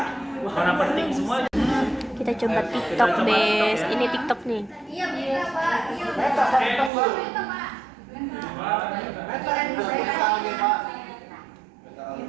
Mana penting semua. kita coba TikTok Bes. Ini TikTok nih. Iya bisa Pak. Iya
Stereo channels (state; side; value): drops out; left; at 6.9 s